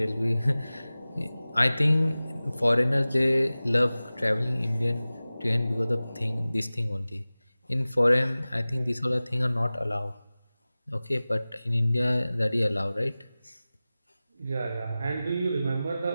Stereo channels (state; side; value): inverted; both; correlation -0.97